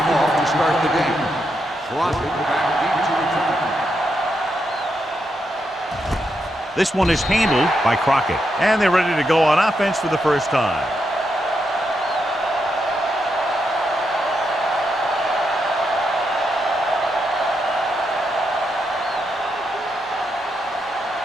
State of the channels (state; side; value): normal; both; correlation 0.82